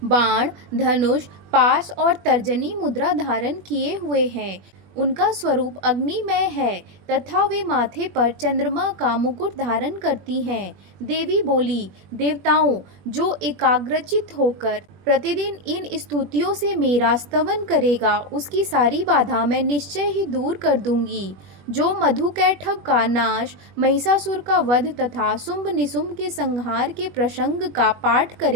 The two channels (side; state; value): left; late; 21 ms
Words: बाण, धनुष, पास और तर्जनी मुद्रा धारण किए हुए हैं। उनका स्वरूप अग्निमय है तथा वे माथे पर चंद्रमा का मुकुट धारण करती हैं। देवी बोली, देवताओं, जो एकाग्रचित होकर प्रतिदिन इन स्तुतियों से मेरा स्तवन करेगा, उसकी सारी बाधा मैं निश्चय ही दूर कर दूंगी। जो मधुकैटभ का नाश, महिषासुर का वध तथा शुंभ निशुंभ के संहार के प्रसंग का पाठ